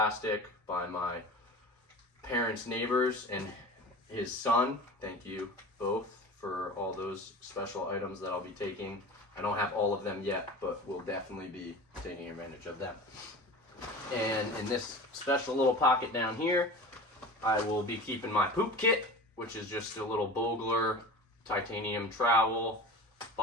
by my parents' neighbors and his son. Thank you both for all those special items that I'll be taking. I don't have all of them yet, but we'll definitely be taking advantage of them. And in this special little pocket down here, I will be keeping my poop kit, which is just a little Bogler titanium trowel,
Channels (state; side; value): normal; both; correlation 0.35